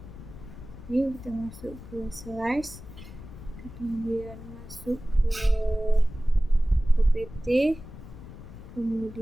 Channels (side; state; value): left; noise; rumble, 14 dB below the sound